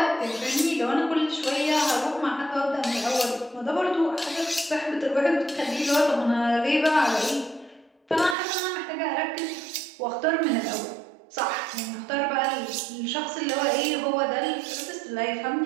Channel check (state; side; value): drops out; left; at 8.3 s